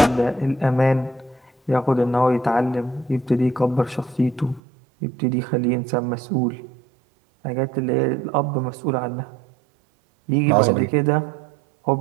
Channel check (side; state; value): left; drops out; at 4.6 s